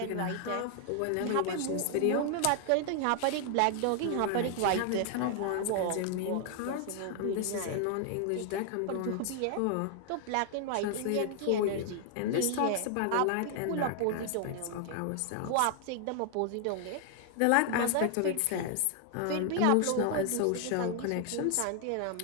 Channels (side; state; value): both; different; correlation 0.00